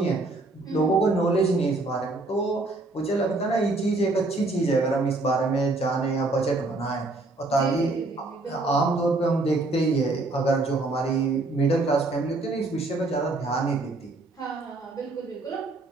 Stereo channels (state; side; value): quieter; left; 3.1 dB